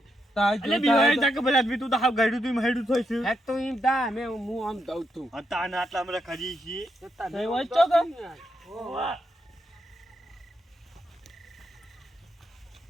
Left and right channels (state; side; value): normal; both; correlation 0.81